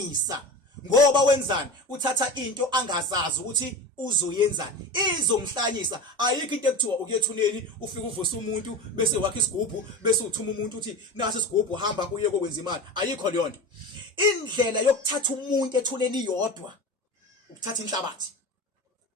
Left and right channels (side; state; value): both; normal; correlation 0.29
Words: ngoba wenzani uthatha into angazazi ukuthi uzoyenzani izomhlanyisa ayikho into ekuthiwa ukuyethuneni ufike uvusa umuntu bese wakha isigubhu bese uthuma umuntu uthi nasi isigubhu hamba uye kokwenza imali ayikho leyo nto indlela yokuthatha umuntu ethuneni yodwa ukuthatha inhlabathi